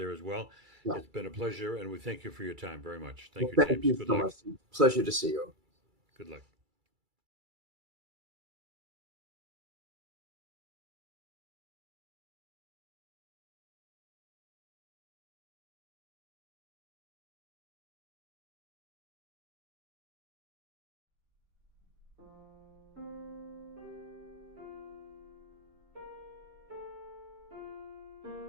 as well. Yeah. It's been a pleasure, and we thank you for your time very much. Thank you, James. Thank you so much. Pleasure to see you. Good luck.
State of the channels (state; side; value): late; left; 2.3 ms